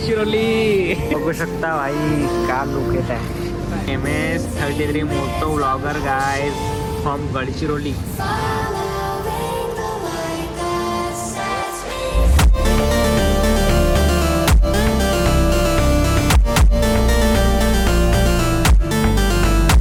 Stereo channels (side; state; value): both; identical; correlation 1.00